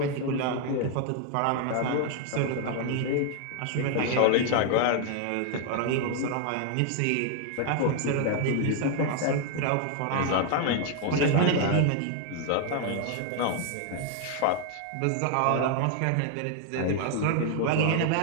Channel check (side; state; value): both; different; correlation 0.00